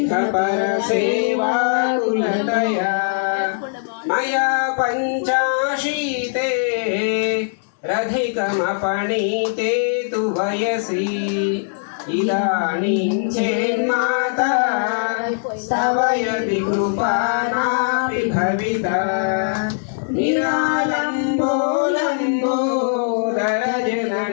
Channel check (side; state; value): right; silent; digital silence